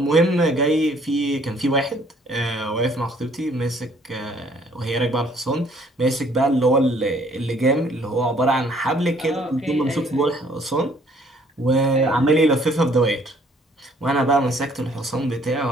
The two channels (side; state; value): both; normal; correlation 0.60